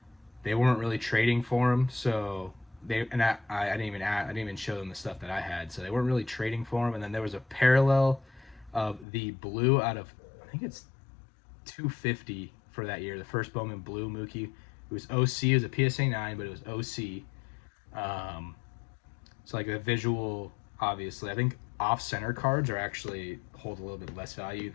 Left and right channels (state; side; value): drops out; right; at 9.1 s